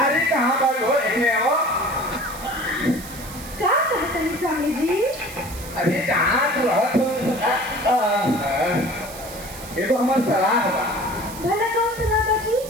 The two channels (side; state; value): right; noise; hiss, 14 dB below the sound